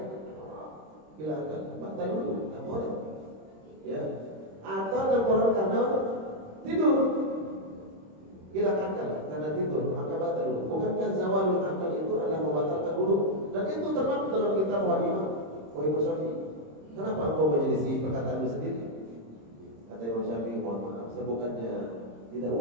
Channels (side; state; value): left; late; 26 ms